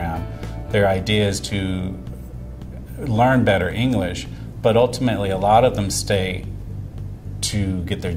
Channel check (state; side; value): identical; both; correlation 1.00